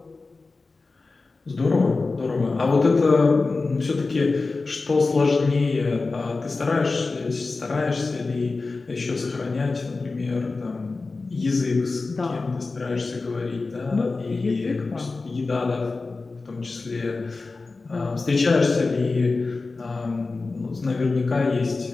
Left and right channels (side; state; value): right; quieter; 3.8 dB